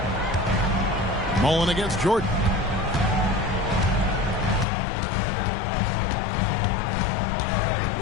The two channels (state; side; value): drops out; right; at 4.7 s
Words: Mullen against Jordan.